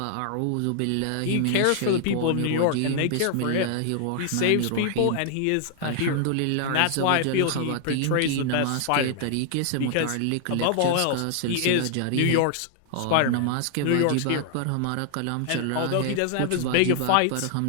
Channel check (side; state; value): both; different; correlation -0.01